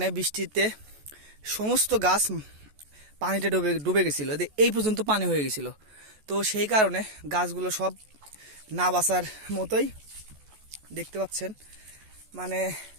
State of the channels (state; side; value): late; left; 14 ms